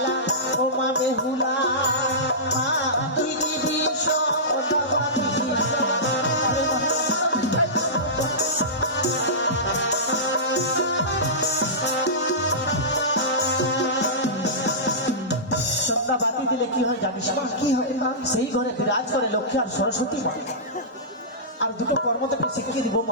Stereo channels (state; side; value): normal; both; correlation -0.18